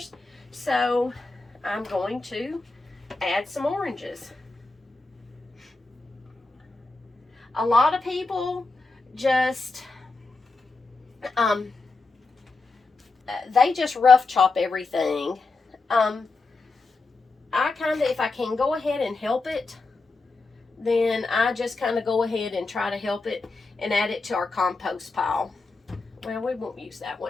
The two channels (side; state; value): right; quieter; 3.6 dB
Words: so I'm going to add some oranges. A lot of people just they just rough chop everything. I kind of, if I can go ahead and help it, then I just kind of go ahead and try to help it and add it to our compost pile. Well, we won't use that